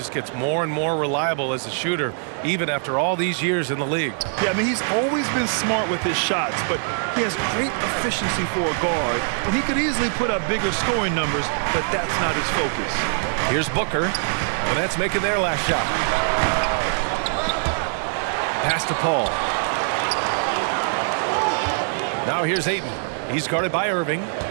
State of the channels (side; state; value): left; silent; 60 dB below the other